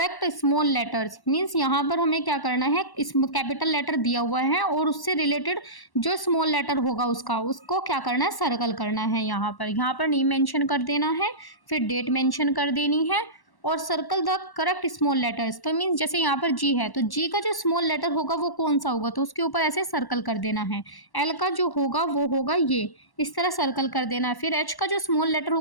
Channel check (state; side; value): late; right; 1.1 ms